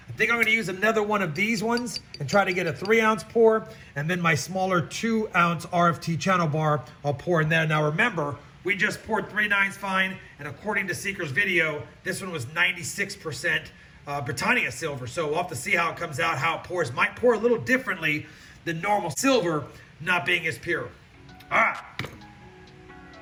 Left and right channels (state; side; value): identical; both; correlation 1.00